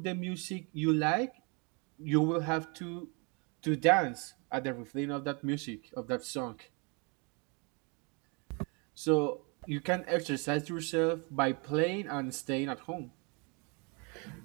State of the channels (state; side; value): quieter; left; 32.7 dB